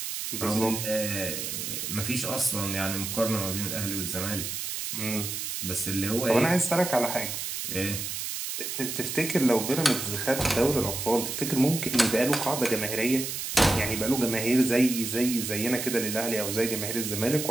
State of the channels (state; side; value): noise; right; hiss, 4 dB below the sound